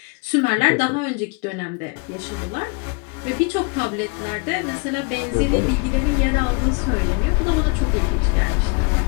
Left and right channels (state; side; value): quieter; right; 32.4 dB